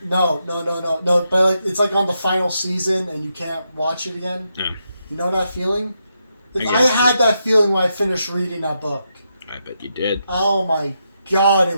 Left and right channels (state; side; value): inverted; both; correlation -0.83